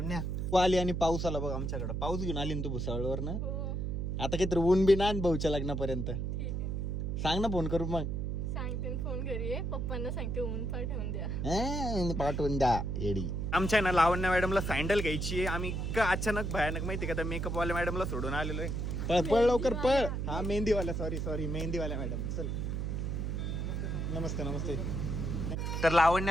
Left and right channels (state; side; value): noise; right; hum, 1 dB below the sound